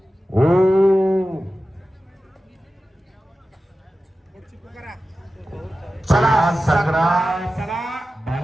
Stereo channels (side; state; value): both; normal; correlation 0.94